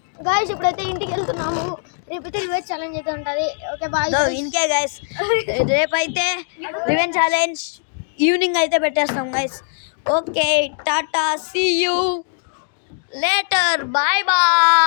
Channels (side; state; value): right; silent; digital silence